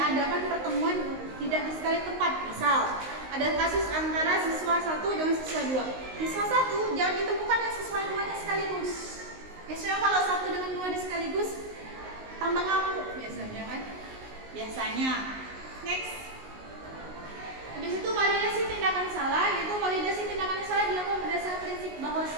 pertemuan tidak di sekali tempat. Misal ada kasus antara siswa 1 dengan siswa 2. Siswa 1 jangan ditemukan dengan siswa 2-nya sekaligus. Biasanya kalau 1 dengan 2 di sekaligus tambah ngamuk biasanya kan. Biasanya. Next. Habis itu validasi tindakan salah, yaitu validasi tindakan salah dilakukan berdasarkan prinsip bahwa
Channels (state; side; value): late; left; 19 ms